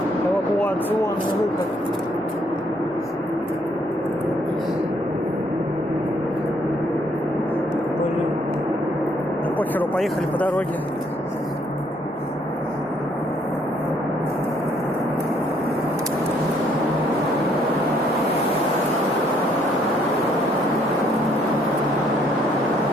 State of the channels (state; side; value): normal; both; correlation 0.67